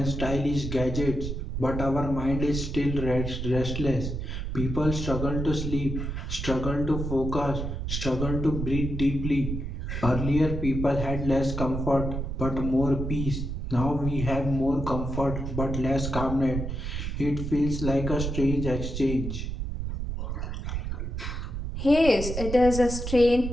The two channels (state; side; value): noise; right; rumble, 4 dB below the sound